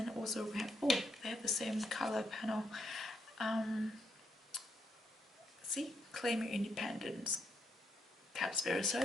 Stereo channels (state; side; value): normal; both; correlation 0.78